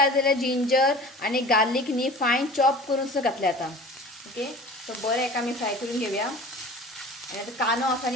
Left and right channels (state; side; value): normal; both; correlation 0.41